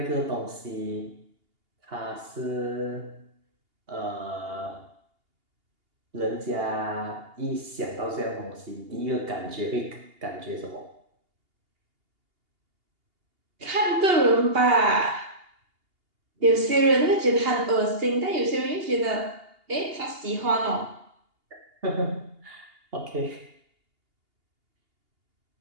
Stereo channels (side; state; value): left; late; 2.8 ms